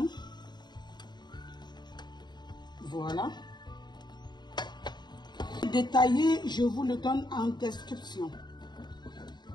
Voilà. Détaillé, je vous le donne en description.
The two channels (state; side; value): late; right; 0.21 ms